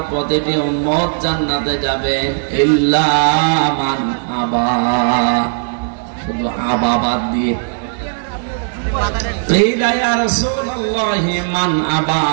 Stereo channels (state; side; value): silent; left; digital silence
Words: প্রতিটি উম্মত জান্নাতে যাবে, ইল্লা মান আবা, শুধু আবা বাদ দিয়ে। কিলা ইয়া রাসূলুল্লাহি মান আবা,